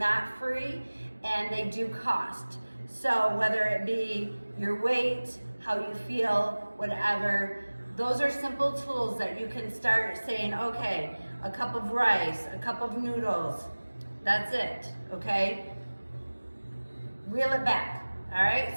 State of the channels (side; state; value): both; inverted; correlation -1.00